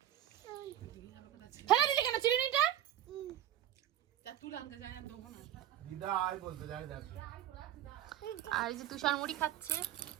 ফেলে দিলি কেন চিরুনিটা? দিদা আয় বলতে যায় দেখ। আর এই যে তুষার মুড়ি খাচ্ছে।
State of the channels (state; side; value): quieter; left; 11.9 dB